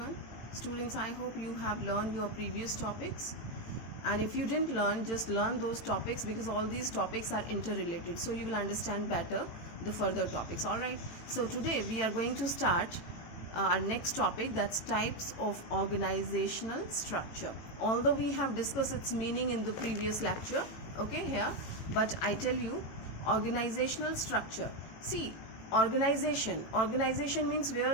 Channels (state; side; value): late; right; 18 ms